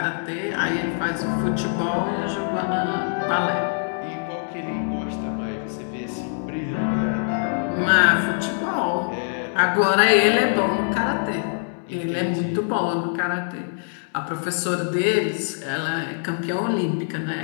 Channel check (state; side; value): silent; right; 63 dB below the other